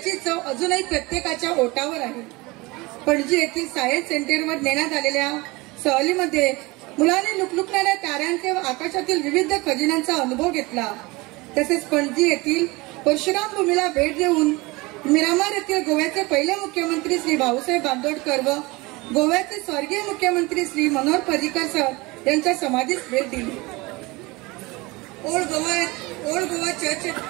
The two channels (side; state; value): left; quieter; 23.5 dB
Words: चव अजूनही प्रत्येकाच्या ओठावर आहे. पणजी येथील सायन्स सेंटरवर नेण्यात आलेल्या सहलीमध्ये मुलांनी लुकलुकणाऱ्या ताऱ्यांचे व आकाशातील विविध खजिन्यांचा अनुभव घेतला. तसेच पणजी येथील परशुराम भूमीला भेट देऊन मिरामार येथील गोव्याचे पहिले मुख्यमंत्री श्री भाऊसाहेब बांदोडकर व गोव्याचे स्वर्गीय मुख्यमंत्री श्री मनोहर पर्रिकर सर यांच्या समाधीस भेट दिली. ओल्ड गोवा